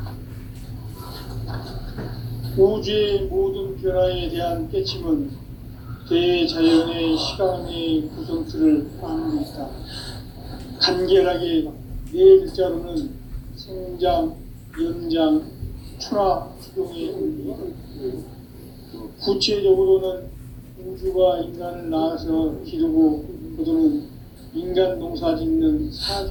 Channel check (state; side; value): identical; both; correlation 1.00